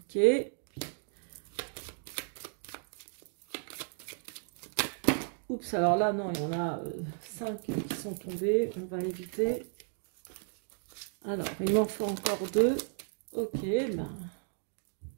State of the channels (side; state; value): left; silent; 55 dB below the other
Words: Oups, alors là, non, il y en a 5 qui sont tombés. On va éviter. Alors, il m'en faut encore 2. Ok, ben...